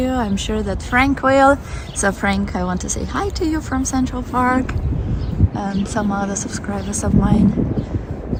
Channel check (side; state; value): both; identical; correlation 1.00